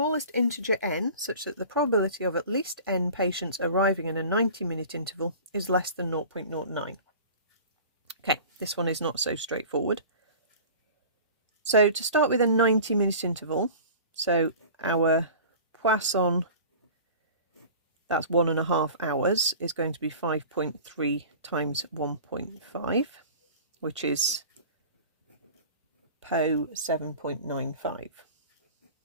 integer n such that the probability of at least n patients arriving in a 90-minute interval is less than 0.09. Okay, this one is not so straightforward. So to start with a 90-minute interval, so our Poisson, that's 1.5 hours, is going to be 5.3 times 1.5, which is Po 7.95.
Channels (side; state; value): both; inverted; correlation -0.40